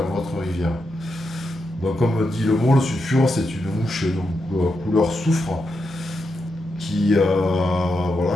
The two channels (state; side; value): normal; both; correlation 0.85